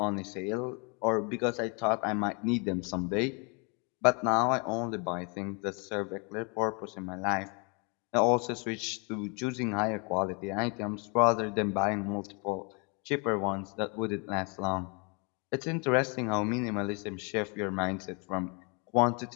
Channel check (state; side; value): quieter; right; 33.4 dB